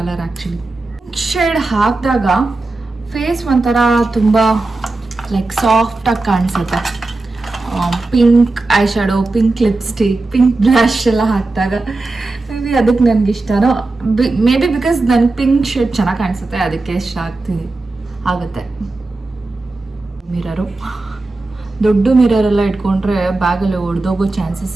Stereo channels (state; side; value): quieter; left; 3.2 dB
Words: ಆ್ಯಕ್ಚುಲಿ. ಶೇಡ್ ಹಾಕಿದಾಗ ಫೇಸ್ ಒಂಥರ ತುಂಬ ಲೈಕ್ ಸಾಫ್ಟಾಗಿ ಕಾಣಿಸುತ್ತೆ. Pink I shadow, pink lipstick, pink blush ಎಲ್ಲ ಹಾಕಿದಾಗ ಮೇ ಬಿ ಅದಕ್ಕೆ ನನಗೆ ಇಷ್ಟನೋ. ಮೇ ಬಿ ಬಿಕಾಸ್ ನನಗೆ ಪಿಂಕ್ ಶೇಡ್ ಚೆನ್ನಾಗಿ ಕಾಣಿಸುತ್ತೆ, ಅದಕ್ಕೆ ಇಷ್ಟ ಆಗುತ್ತೆ. ಮಿರರು, ದೊಡ್ಡ ಮಿರರೆಲ್ಲ ಇಟ್ಕೊಂಡ್ರೆ ಬ್ಯಾಗಲ್ಲಿ ಒಡೆದೋಗೋ ಚಾನ್ಸಸ್